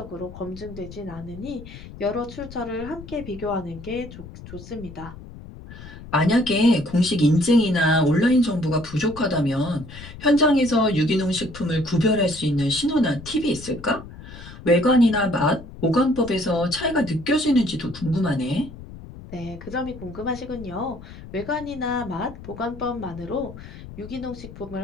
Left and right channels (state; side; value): noise; left; rumble, 15 dB below the sound